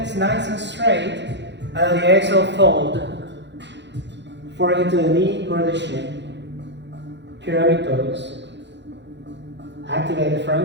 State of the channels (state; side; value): late; left; 0.52 ms